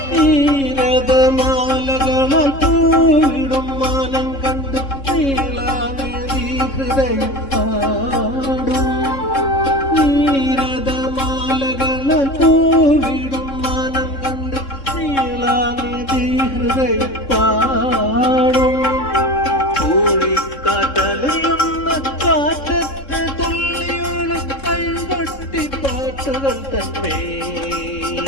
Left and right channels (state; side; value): late; right; 3.7 ms